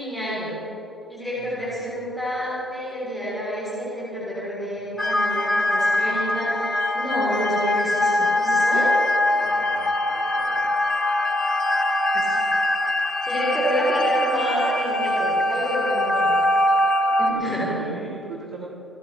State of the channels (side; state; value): both; normal; correlation 0.75